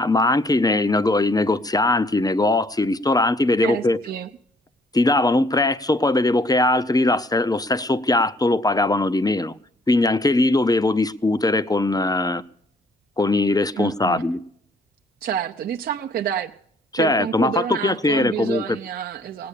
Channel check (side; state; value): both; normal; correlation 0.61